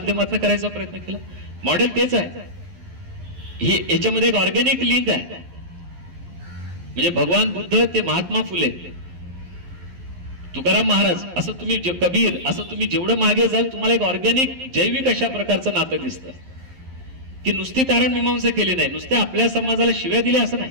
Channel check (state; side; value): late; left; 11 ms